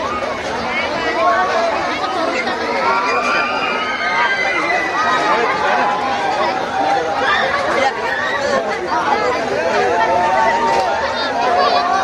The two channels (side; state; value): both; identical; correlation 1.00